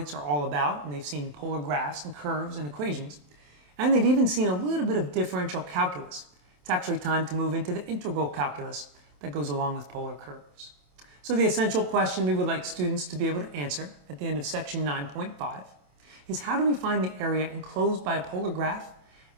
are all about, and they've seen polar graphs and curves and equations, and they've even seen a little bit of differential calculus, it's actually time to move into the integral calculus that goes along with polar curves. So the essential question we would like students to be able to answer at the end of section 9.5 is, how do we find the area enclosed by a polar graph,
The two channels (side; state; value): left; late; 27 ms